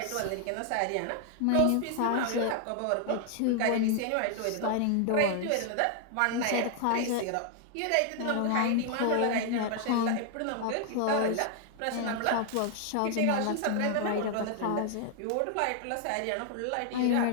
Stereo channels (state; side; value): different; both; correlation 0.00